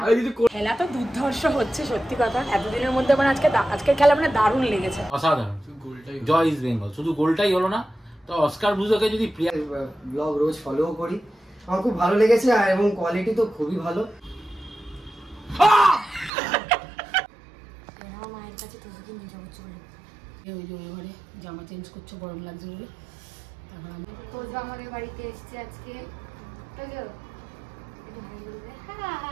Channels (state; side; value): drops out; left; at 16.3 s